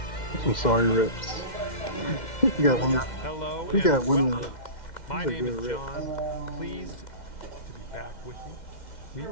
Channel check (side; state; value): right; late; 2.1 ms